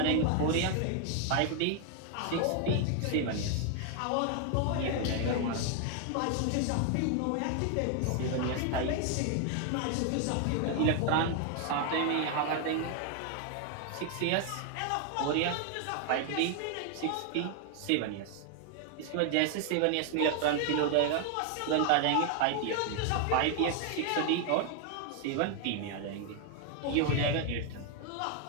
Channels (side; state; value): both; different; correlation 0.00